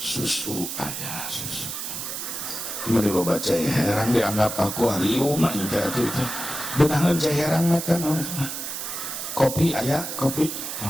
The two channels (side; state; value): right; noise; hiss, 6 dB below the sound